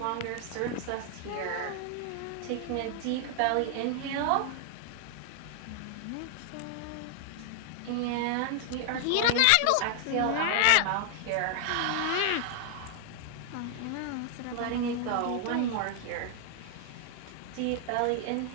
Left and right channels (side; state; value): both; different; correlation 0.00